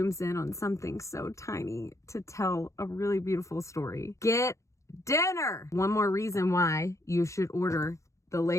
in on something so tiny to tell a really beautiful story. Get dinner! One more reason why you should order the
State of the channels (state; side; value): late; right; 0.15 ms